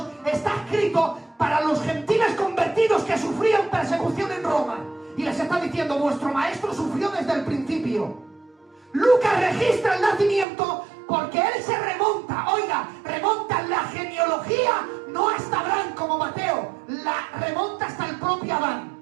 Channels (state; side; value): drops out; left; at 10.5 s